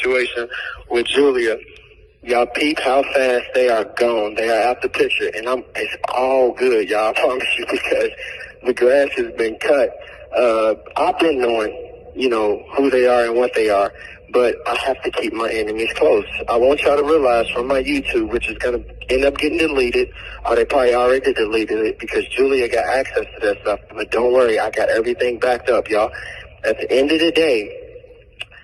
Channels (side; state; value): both; identical; correlation 1.00